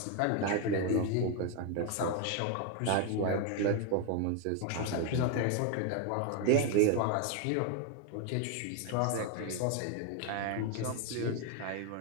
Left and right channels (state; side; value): different; both; correlation 0.01